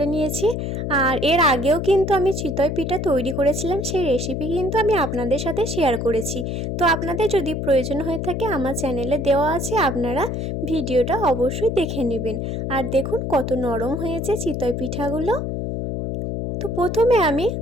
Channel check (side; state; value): left; noise; hum, 3 dB below the sound